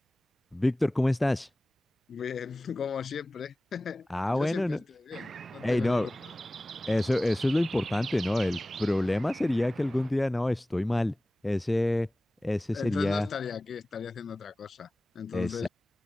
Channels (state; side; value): normal; both; correlation 0.98